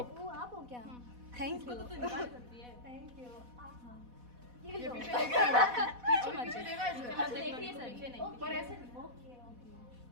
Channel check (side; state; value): left; late; 4.1 ms